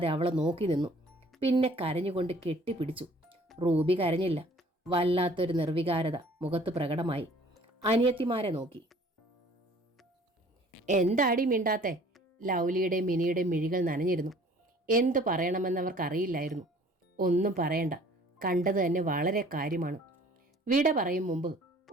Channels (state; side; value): normal; both; correlation 0.53